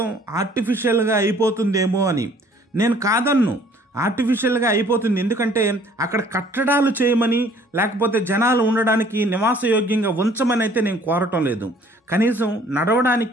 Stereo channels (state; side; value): normal; both; correlation 0.57